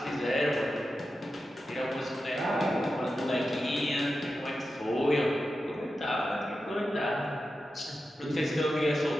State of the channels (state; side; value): normal; both; correlation 0.91